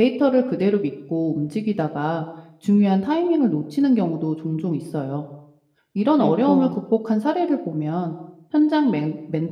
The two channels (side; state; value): both; identical; correlation 1.00